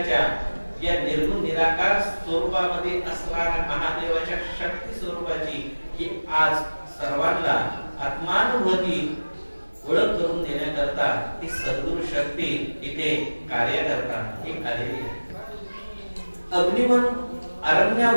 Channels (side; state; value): both; inverted; correlation -1.00